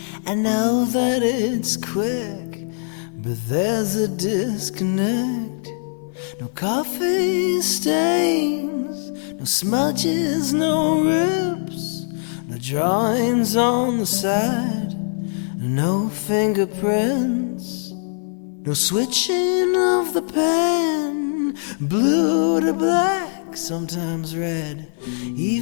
I know that it's quick, but there's a disconnect. No coffee stains, no smudges, no rips, no drawings on the side, no fingerprints, no switching of the pen, blue to black, sometimes red,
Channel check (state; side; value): silent; right; 56 dB below the other